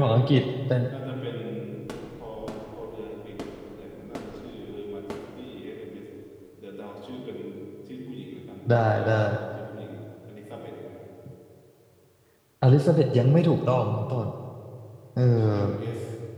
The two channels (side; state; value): both; identical; correlation 1.00